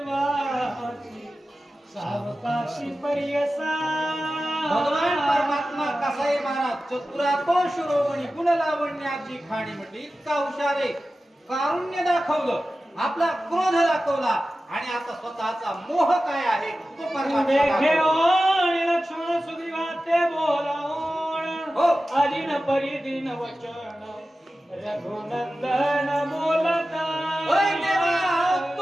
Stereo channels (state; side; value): normal; both; correlation 0.94